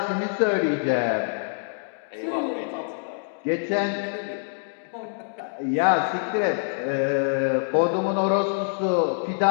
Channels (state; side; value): silent; right; digital silence